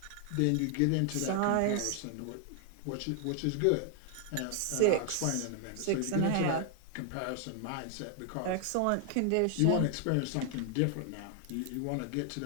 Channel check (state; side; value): different; both; correlation 0.00